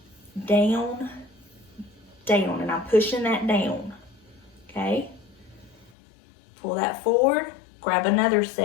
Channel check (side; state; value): right; drops out; at 5.9 s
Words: down, down, and I'm pushing that down, okay? Pull that forward, grab another